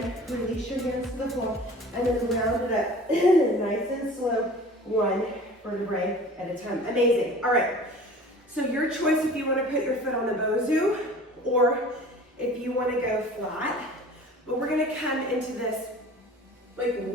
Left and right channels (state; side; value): normal; both; correlation 0.43